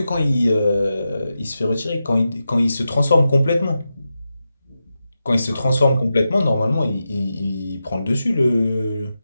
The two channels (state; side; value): inverted; both; correlation -0.90